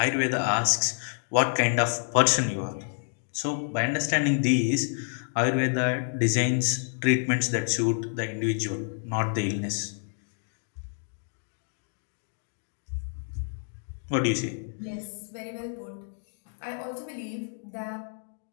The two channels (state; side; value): silent; right; digital silence